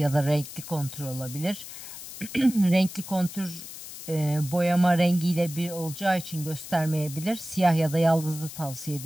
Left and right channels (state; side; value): noise; left; hiss, 12 dB below the sound